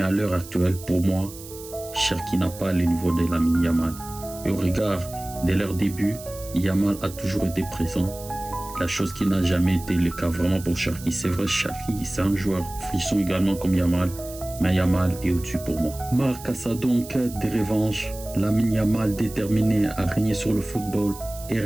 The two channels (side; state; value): right; noise; hiss, 16 dB below the sound